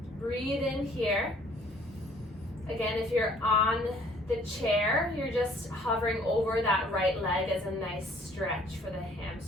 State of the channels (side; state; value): both; normal; correlation 0.58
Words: Breathe in here. Again, if you're on the chair, you're just hovering over that right leg as a nice stretch for the